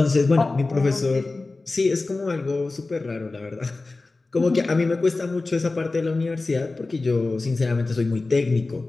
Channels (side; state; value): right; quieter; 3.4 dB